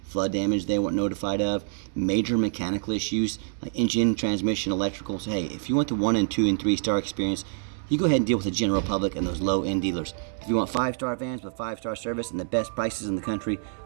flood damage they weren't notified of, major mechanical issues like engine, transmission, electrical. So hey, if you want the 1 and 2 and 3-star experience, you go ahead and deal with the general public and those low-end dealers. If you want 5-star vans with 5-star service and the best prices in the country,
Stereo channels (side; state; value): left; silent; digital silence